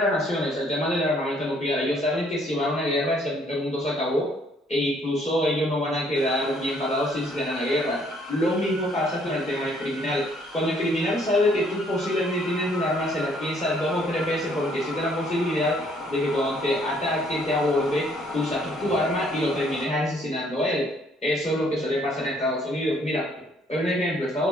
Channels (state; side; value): normal; both; correlation 0.64